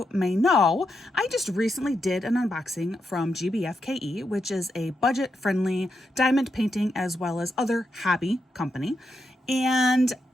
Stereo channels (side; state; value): both; normal; correlation 0.84